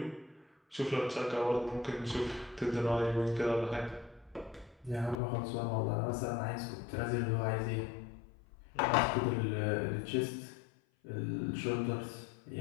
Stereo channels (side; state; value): right; drops out; at 5.2 s